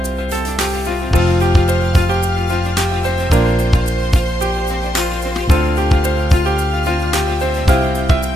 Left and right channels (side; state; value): both; normal; correlation 0.81